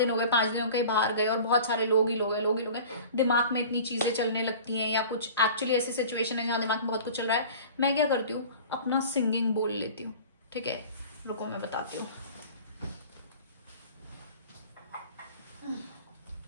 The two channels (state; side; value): inverted; both; correlation -0.41